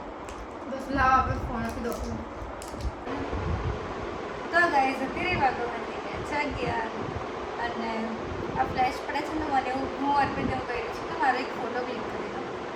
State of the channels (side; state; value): both; identical; correlation 1.00